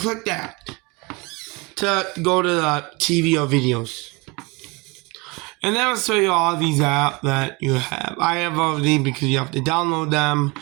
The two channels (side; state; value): left; quieter; 26.7 dB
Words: that to go to the TV or videos. And that will show you all these apps that you have. I have all of these because you have to download them.